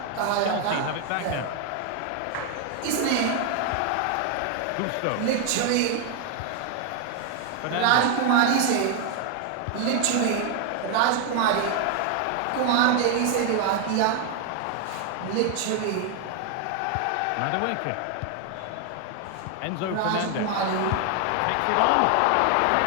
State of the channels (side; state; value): both; different; correlation 0.01